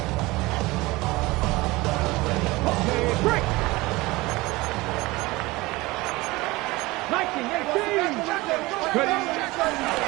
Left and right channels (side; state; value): left; quieter; 21.2 dB